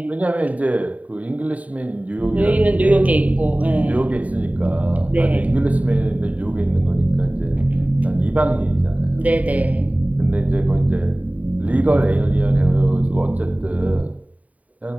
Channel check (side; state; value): left; late; 0.070 ms